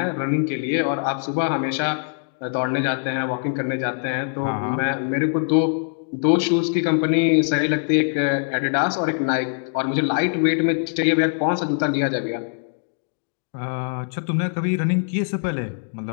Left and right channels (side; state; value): right; silent; digital silence